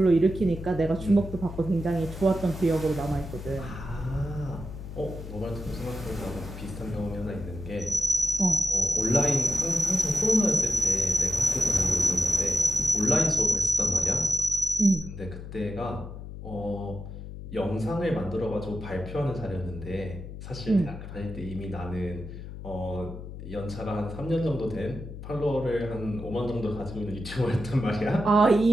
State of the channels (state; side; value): noise; left; hum, 11 dB below the sound